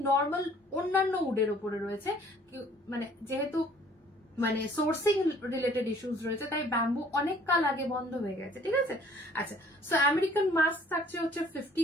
নর্মাল অন্যান্য উডের ওপরে রয়েছে। মানে যেহেতু মানে সোর্সিং রিলেটেড ইস্যুস রয়েছে, তাই ব্যাম্বু অনেক কাল আগে বন্ধ হয়ে গেছে, ঠিক আছে। আচ্ছা, সো আমেরিকান মাস্ক থাকছে হচ্ছে 50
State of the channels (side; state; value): both; normal; correlation 0.57